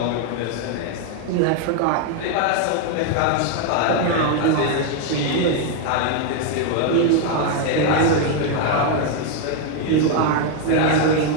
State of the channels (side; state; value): both; different; correlation 0.01